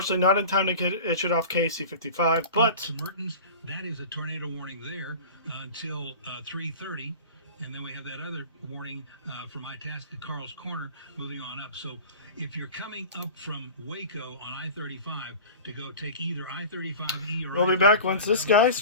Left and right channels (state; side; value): inverted; both; correlation -0.37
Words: not in time to get issued off KEC 55, but Mertens, that is a tornado warning there until 3:30. And then we have that other warning from Itasca, Carl's Corner, moving on up. So if you're coming up from Waco on I-35 to go take either I-35E or we'll be back once this guy